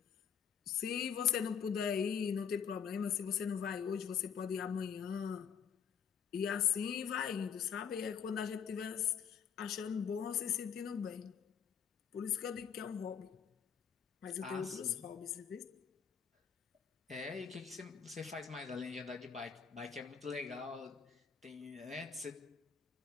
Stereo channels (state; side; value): quieter; right; 7.5 dB